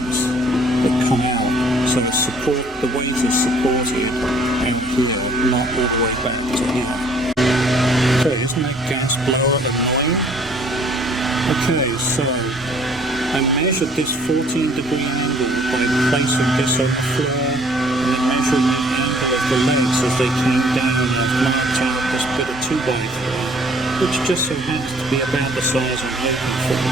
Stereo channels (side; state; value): both; normal; correlation 0.58